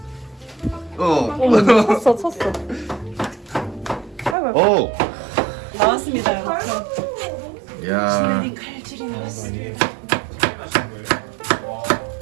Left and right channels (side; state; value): left; drops out; at 4.4 s